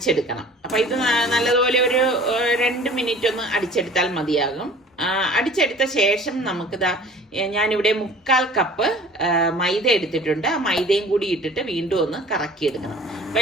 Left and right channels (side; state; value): both; normal; correlation 0.46